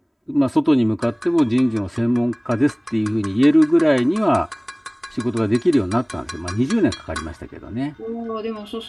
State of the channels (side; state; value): both; identical; correlation 1.00